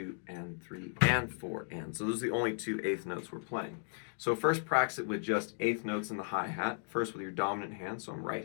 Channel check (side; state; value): right; silent; 54 dB below the other